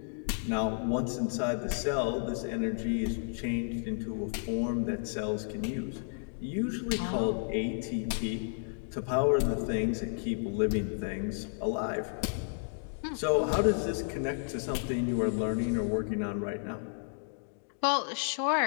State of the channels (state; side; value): silent; right; digital silence